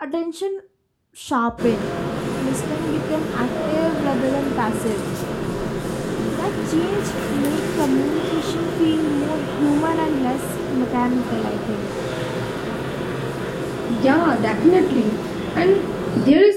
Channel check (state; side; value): identical; both; correlation 1.00